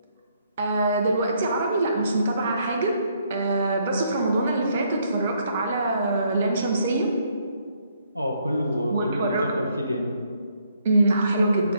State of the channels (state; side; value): inverted; both; correlation -0.71